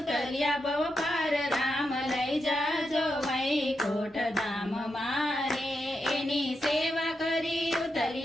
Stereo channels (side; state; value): both; normal; correlation 0.86